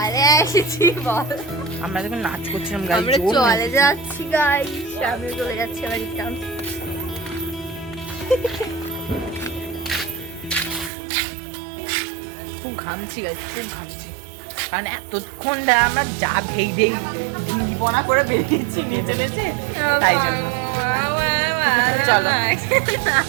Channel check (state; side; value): drops out; left; at 10.9 s